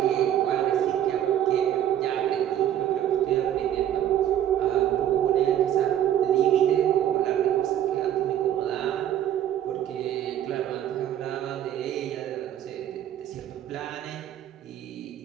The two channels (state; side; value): quieter; left; 11.0 dB